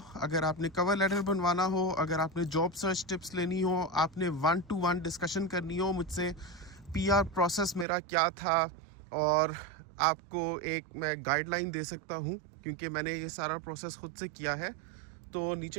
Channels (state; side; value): drops out; left; at 7.9 s